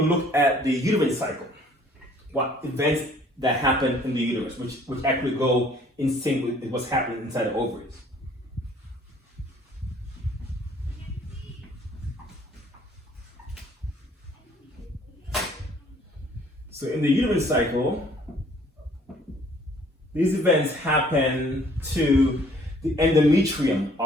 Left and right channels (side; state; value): both; normal; correlation 0.58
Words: look at the uterine cycle. What events that happen in the uterus, which actually go in sync with what's happening inside the ovaries. So in the uterine cycle, these events happen to the endometrium